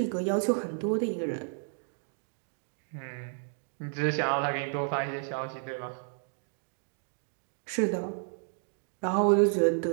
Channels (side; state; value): left; silent; 57 dB below the other